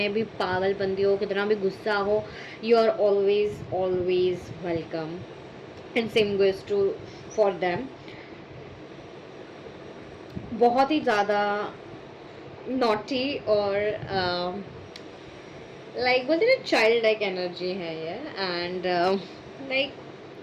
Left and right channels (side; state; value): both; identical; correlation 1.00